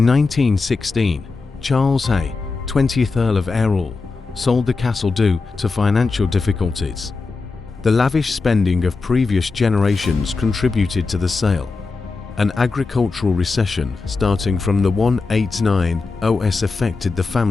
1916, Charles Hay, 20th Earl of Errol, sold the castle due to financial difficulties. The lavish spending of previous generations contributed to the sale. An agricultural recession starting from the 189 OS affected the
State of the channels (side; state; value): right; quieter; 4.1 dB